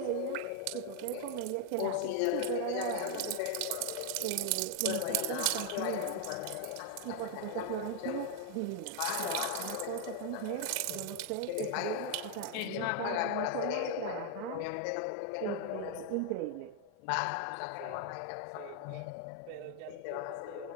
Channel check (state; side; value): different; both; correlation 0.00